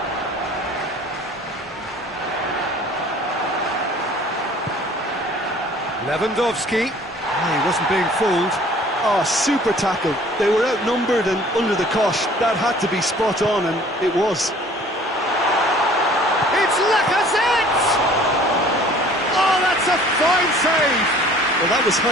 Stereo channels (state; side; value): normal; both; correlation 0.51